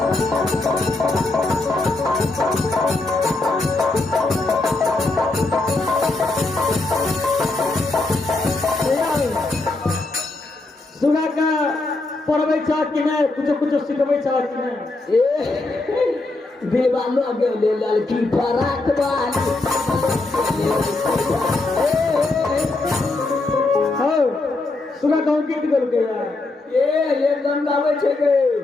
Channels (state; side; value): quieter; right; 3.2 dB